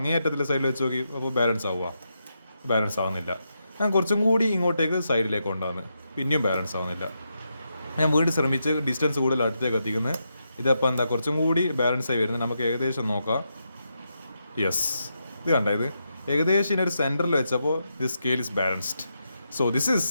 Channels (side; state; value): both; inverted; correlation -0.84